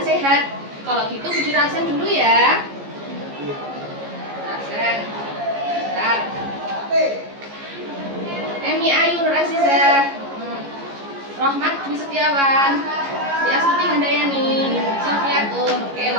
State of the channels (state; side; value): late; left; 14 ms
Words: Kalau gitu Budi rasen dulu ya. Rasen. Bentar. Emi Ayu Nur Azizah, Rohmat Dwi Setiawan, Sri Astuti Handayani, Sofiatun. Oke,